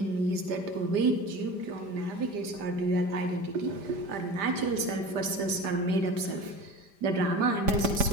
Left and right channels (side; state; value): left; late; 5.0 ms